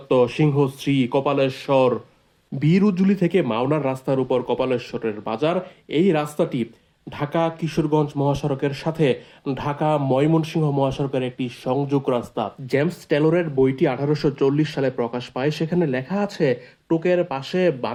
সিংহশ্রী, কপালেশ্বর, বীরুজুলি থেকে মাওনার রাস্তার উপর কপালেশ্বরের বাজার। এই রাস্তাটি ঢাকা কিশোরগঞ্জ মহাসড়কের সাথে ঢাকা ময়মনসিংহ মহাসড়কের একটি সংযোগ রাস্তা। জেমস টেলরের বইটি 1840 সালে প্রকাশ পায়। সেখানে লেখা আছে, টোকের পাশে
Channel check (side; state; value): both; identical; correlation 1.00